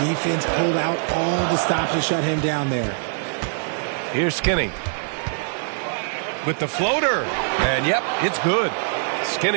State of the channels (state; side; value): silent; left; 64 dB below the other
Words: pulled out all the stops to shut him down there. Here's Skinny. With the floater. And yep, it's good.